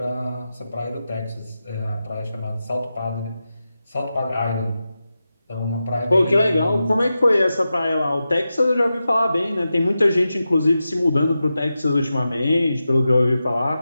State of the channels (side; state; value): both; inverted; correlation -0.92